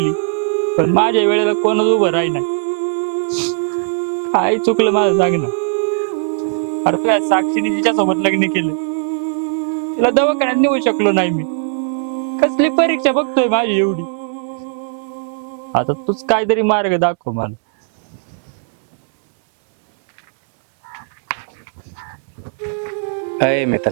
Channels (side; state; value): left; silent; digital silence